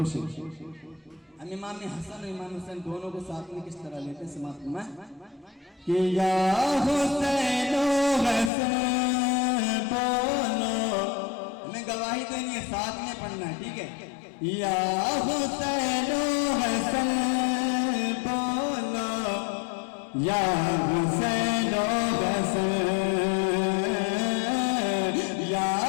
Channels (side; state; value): right; drops out; at 8.5 s